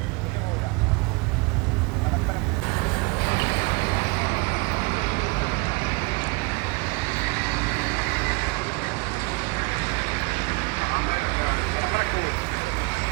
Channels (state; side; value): quieter; left; 28.0 dB